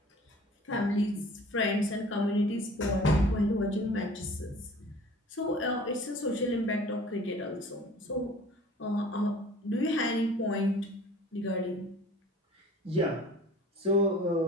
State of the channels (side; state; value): both; normal; correlation 0.47